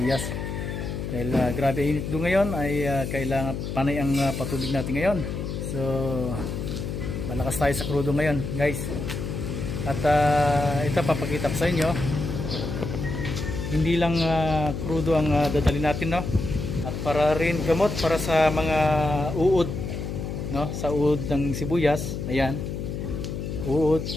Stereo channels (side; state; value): left; noise; hum, 5 dB below the sound